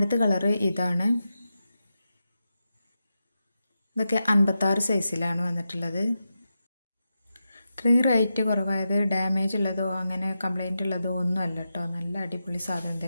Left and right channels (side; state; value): both; inverted; correlation -0.89